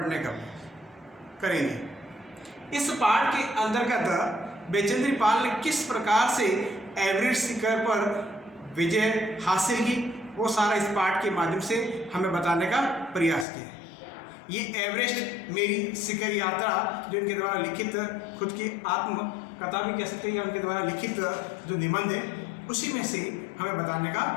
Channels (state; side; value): drops out; right; at 13.5 s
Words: का करेंगे। इस पाठ के अंतर्गत बचेंद्री पाल ने किस प्रकार से एवरेस्ट शिखर पर विजय हासिल की वो सारा इस पाठ के माध्यम से हमें बताने का प्रयास किया। ये एवरेस्ट मेरी शिखर यात्रा जो इनके द्वारा लिखित खुद की आत्म कथा भी कह सकते हैं या उनके द्वारा लिखित जो निबंध है उसी में से हमें बताने का